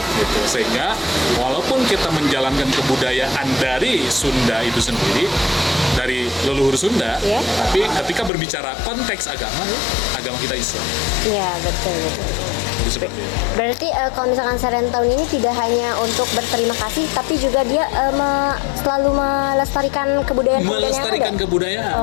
gitu. Sehingga walaupun kita menjalankan kebudayaan dari Sunda itu sendiri, dari leluhur Sunda, tapi ketika berbicara konteks agama, agama kita Islam. Iya, betul. Jadi seperti itu. Berarti kalau misalkan Serentahun ini tidak hanya untuk berterima kasih, tapi juga dia selalu melestarikan kebudayaan yang Melestarikan ada.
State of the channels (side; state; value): right; drops out; at 8.3 s